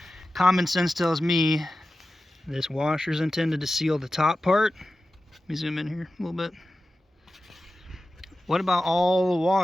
Common sense tells me this washer is intended to seal the top part. Let me zoom in here a little bit. What about all the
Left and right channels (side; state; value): both; normal; correlation 0.93